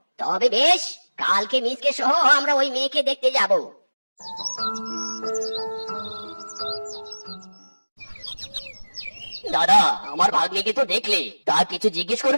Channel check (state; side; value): inverted; both; correlation -1.00